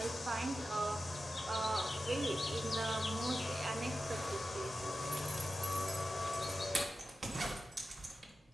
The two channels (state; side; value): normal; both; correlation 0.92